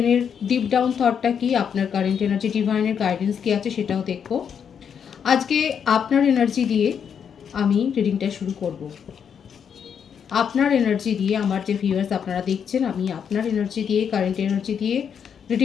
ডিপ ডাউন থটটা কি, আপনার কারেন্ট এনার্জি ডিভাইনের গাইডেন্স কি আছে সেটাও দেখবো। আজকে আপনার এনার্জি দিয়ে আমি রিডিংটা শুরু করব। আপনার এনার্জি দিয়ে আমার যে ভিউয়ার্স আপনারা দেখছেন, আমি আপনার এনার্জি দিয়ে, কারেন্ট এনার্জি দিয়ে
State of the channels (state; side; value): quieter; right; 7.6 dB